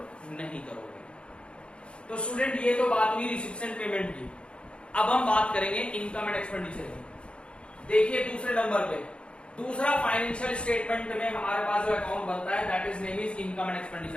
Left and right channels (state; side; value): late; right; 0.057 ms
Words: नहीं करोगे। तो स्टूडेंट ये तो बात हुई रिसिप्ट एंड पेमेंट की। अब हम बात करेंगे इनकम एंड एक्सपेंडिचर की। देखिए दूसरे नंबर पे दूसरा फाइनेंशियल स्टेटमेंट में हमारे पास जो अकाउंट बनता है that is name is income and